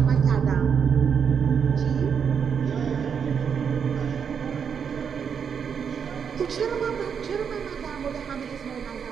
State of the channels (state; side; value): quieter; left; 7.0 dB